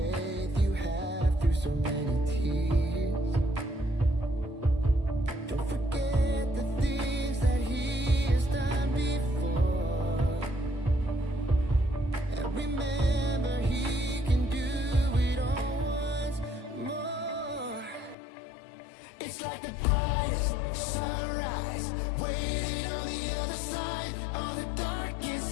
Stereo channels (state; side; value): drops out; right; at 18.2 s